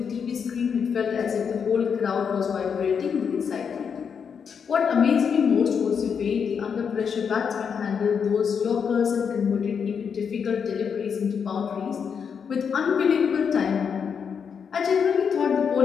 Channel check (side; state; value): right; quieter; 6.7 dB